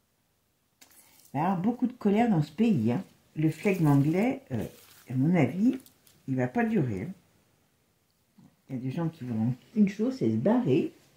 Il va y avoir beaucoup de colère dans ce pays, hein. Le flegme anglais, à mon avis, il ne va pas durer, hein. Il y a des gens qui vont... Une chose, c'est se barrer.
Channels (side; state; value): both; identical; correlation 1.00